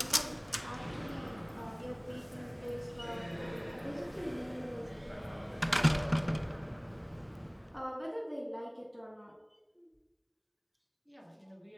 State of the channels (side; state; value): both; identical; correlation 1.00